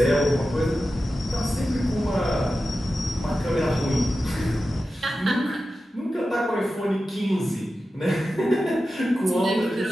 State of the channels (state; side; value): normal; both; correlation 0.93